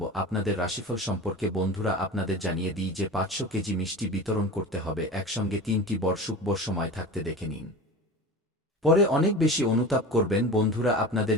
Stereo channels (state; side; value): normal; both; correlation 0.32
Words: আপনাদের রাশিফল সম্পর্কে। বন্ধুরা, আপনাদের জানিয়ে দিই যে 500 কেজি মিষ্টি বিতরণ করতে হবে একসঙ্গে 3টি বর শুভ সময় থাকতে দেখে নিন। পরে অনেক বেশি অনুতাপ করবেন। বন্ধুরা, আপনাদের